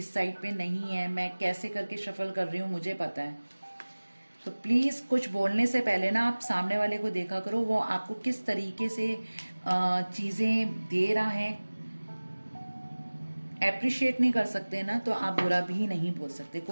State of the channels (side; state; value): both; inverted; correlation -1.00